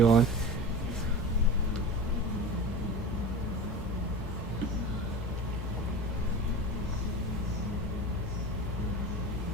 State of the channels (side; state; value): both; normal; correlation 0.31